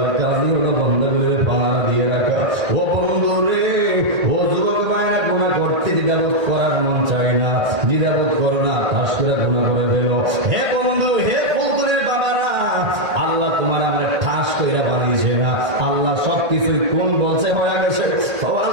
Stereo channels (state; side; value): late; left; 1.8 ms